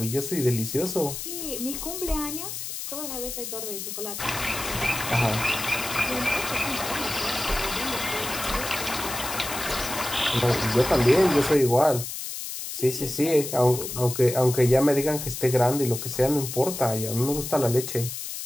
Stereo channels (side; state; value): left; noise; hiss, 7 dB below the sound